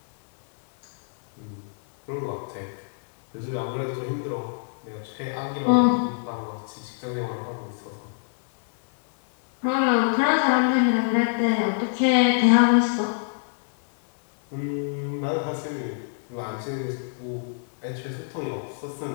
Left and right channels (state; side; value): silent; right; digital silence